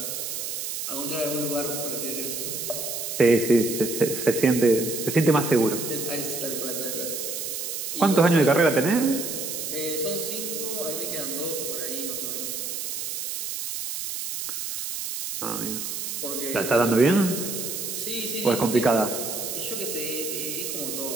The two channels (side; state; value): right; noise; hiss, 4 dB below the sound